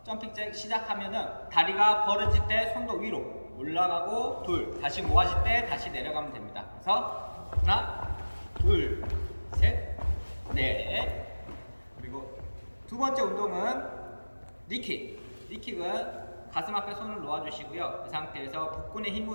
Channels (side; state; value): both; inverted; correlation -1.00